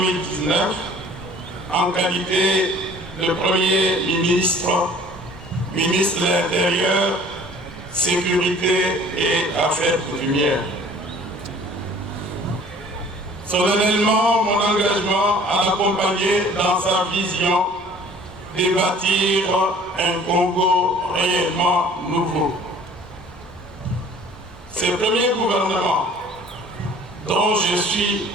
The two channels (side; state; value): both; normal; correlation 0.51